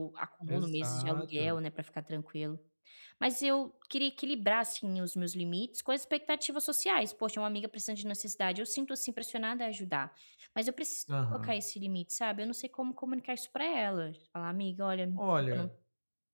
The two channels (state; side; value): inverted; both; correlation -1.00